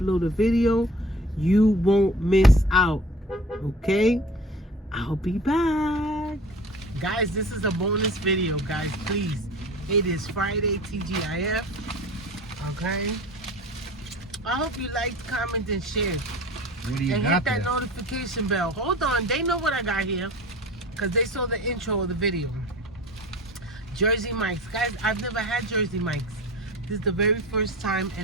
a video, you won't miss out, okay? I'll be back. Guys, this is a bonus video, guys, please. It is Friday, TGIF, okay? I hope you liked, comment, and share. What do you And got hit that there? notification bell. Hold on, they know what I got here because they saw the intro of the video. Jersey Mike's. Guys, I've never had Jersey Mike's. This is the very first time,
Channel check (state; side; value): normal; both; correlation 0.41